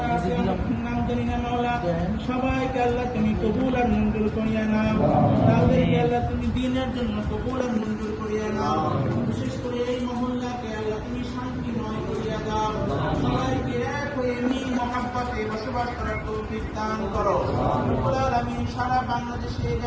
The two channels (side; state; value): both; identical; correlation 1.00